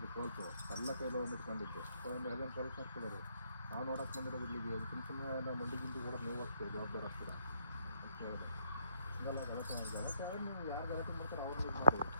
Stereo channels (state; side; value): inverted; both; correlation -0.69